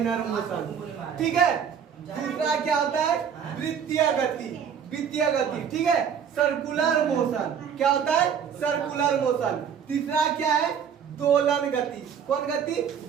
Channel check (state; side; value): quieter; left; 7.7 dB